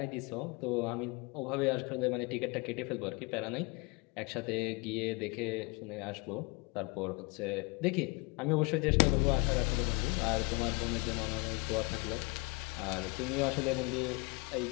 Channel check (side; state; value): right; quieter; 26.7 dB